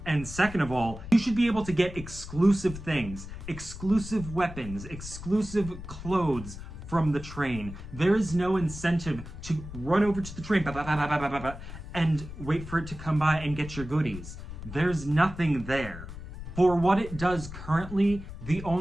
And second of all, you should be able to get exclusive things, exclusive weapons, exclusive clothes from the train. There is no incentive to run over to the train and wait for it to come by and get your goodies. There's nothing there. For what it does currently, the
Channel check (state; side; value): noise; left; rumble, 11 dB below the sound